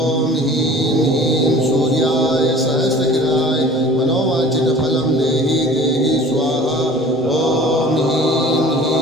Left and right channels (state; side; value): normal; both; correlation 0.47